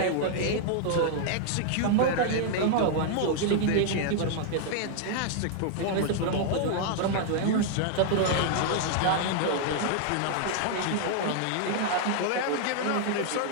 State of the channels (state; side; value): different; both; correlation 0.00